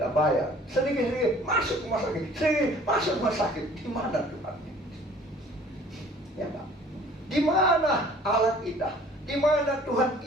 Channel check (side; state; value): both; normal; correlation 0.52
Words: bayar. Sedikit-sedikit masuk rumah sakit, sedikit masuk rumah sakit. Di mana Tuhan? Ya Pak. Di mana Allah kita? Di mana Tuhan